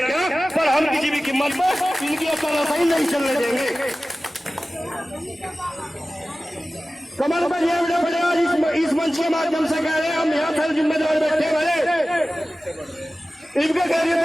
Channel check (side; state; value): both; normal; correlation 0.96